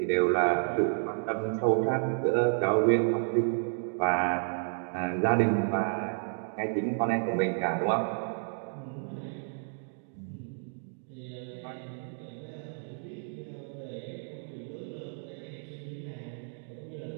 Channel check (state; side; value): silent; left; digital silence